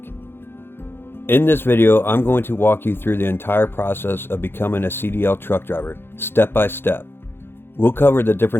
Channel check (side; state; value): right; late; 0.11 ms